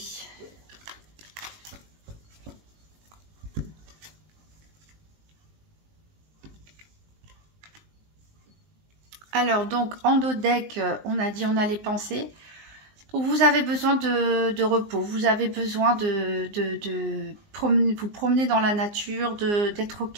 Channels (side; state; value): left; late; 19 ms